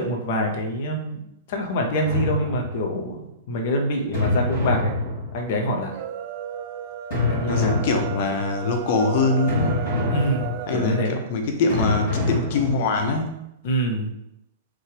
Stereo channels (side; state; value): both; inverted; correlation -0.36